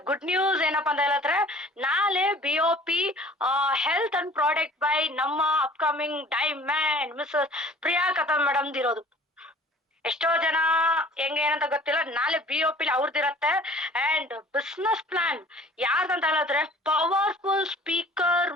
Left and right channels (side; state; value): both; normal; correlation 0.49